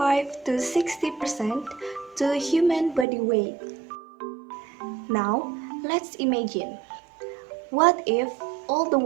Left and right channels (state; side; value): drops out; left; at 3.1 s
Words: to 60% to human body weight. Now, let's imagine. What if all the